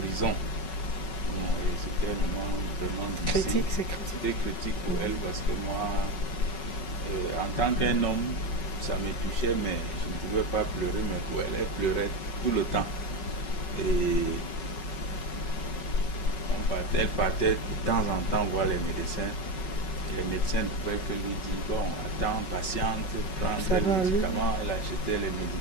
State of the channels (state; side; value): late; right; 5.4 ms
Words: Bon, et c'était un moment vraiment difficile. C'était critique pour elle parce que moi, en tant qu'un homme, ça me touchait, mais je ne pouvais pas pleurer, mais pour elle, elle pleurait tout le temps. Et elle partait de temps en temps voir les médecins. Les médecins ne pouvaient que lui dire, bon, attends, patiente, prends tel médicament. Elle achetait les